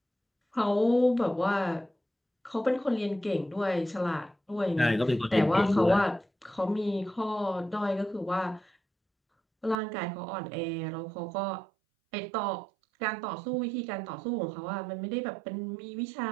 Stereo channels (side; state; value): left; drops out; at 9.8 s